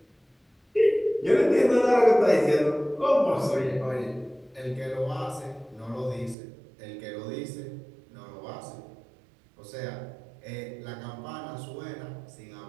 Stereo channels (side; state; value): left; drops out; at 6.4 s